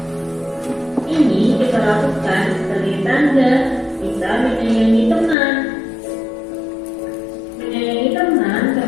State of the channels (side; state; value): right; drops out; at 5.4 s